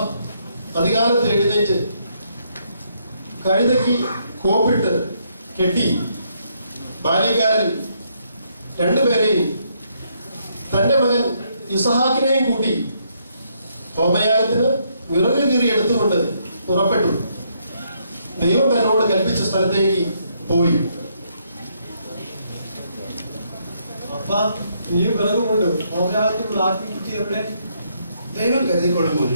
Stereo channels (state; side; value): inverted; both; correlation -0.73